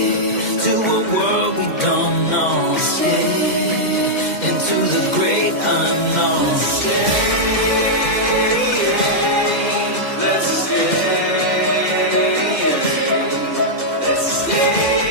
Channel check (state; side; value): late; right; 2.1 ms